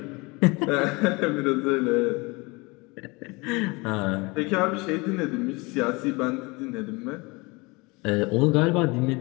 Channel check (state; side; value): quieter; right; 25.9 dB